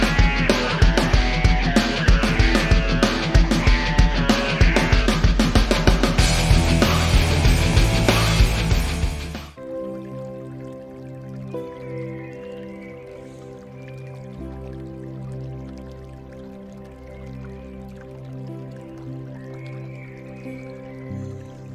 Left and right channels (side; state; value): both; identical; correlation 1.00